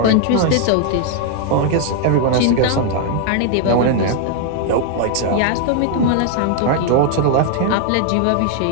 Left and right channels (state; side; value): different; both; correlation 0.00